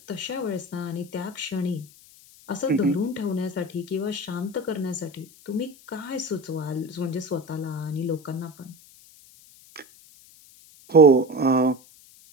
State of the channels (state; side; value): noise; left; hiss, 24 dB below the sound